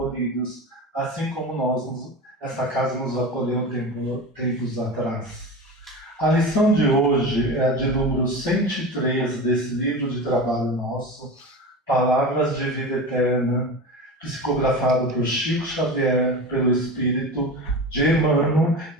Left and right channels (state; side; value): normal; both; correlation 0.28